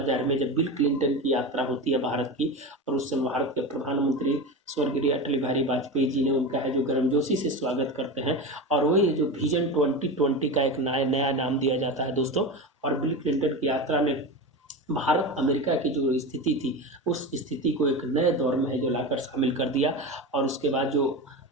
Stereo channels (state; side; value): normal; both; correlation 0.23